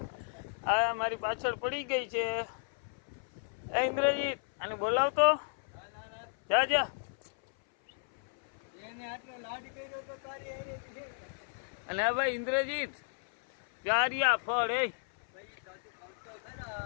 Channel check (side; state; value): right; silent; 55 dB below the other